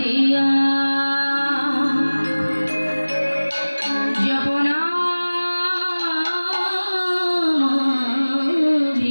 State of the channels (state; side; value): inverted; both; correlation -1.00